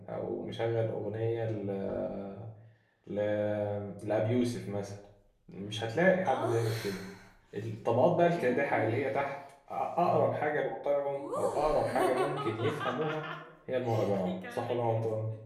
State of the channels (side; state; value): both; identical; correlation 1.00